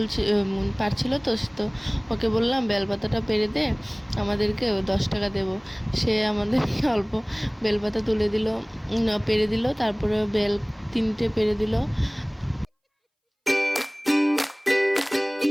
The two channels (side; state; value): both; identical; correlation 1.00